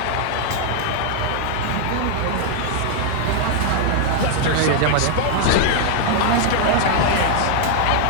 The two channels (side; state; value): both; different; correlation 0.00